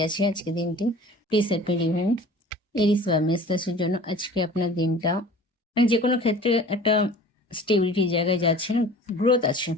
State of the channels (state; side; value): normal; both; correlation 0.44